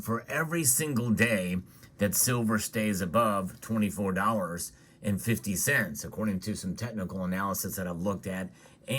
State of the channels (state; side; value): identical; both; correlation 1.00